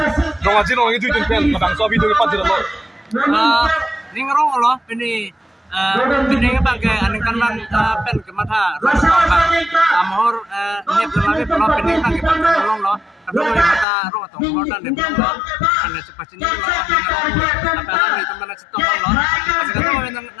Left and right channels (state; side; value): drops out; right; at 13.9 s